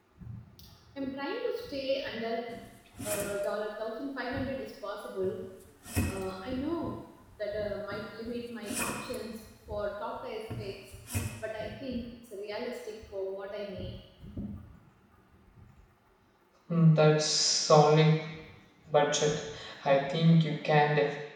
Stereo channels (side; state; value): both; identical; correlation 1.00